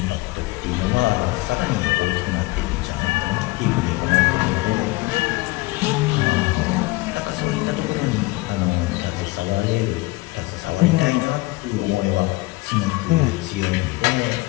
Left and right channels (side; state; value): right; quieter; 21.8 dB